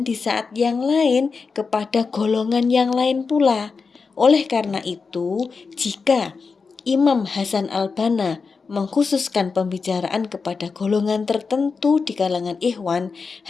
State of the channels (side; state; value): right; quieter; 4.9 dB